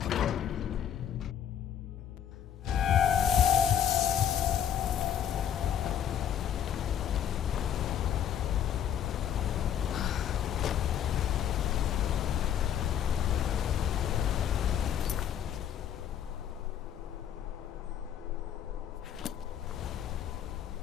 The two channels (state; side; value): quieter; right; 9.5 dB